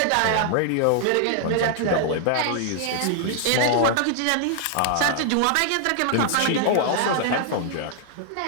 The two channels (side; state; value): both; different; correlation 0.00